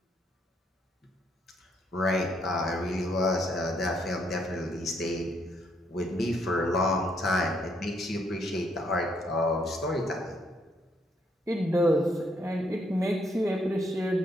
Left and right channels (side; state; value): both; normal; correlation 0.72